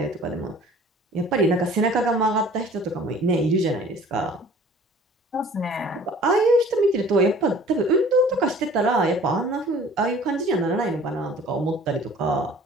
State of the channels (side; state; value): both; normal; correlation 0.49